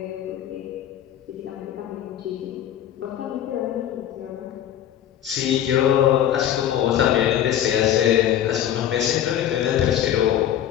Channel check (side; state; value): right; quieter; 10.8 dB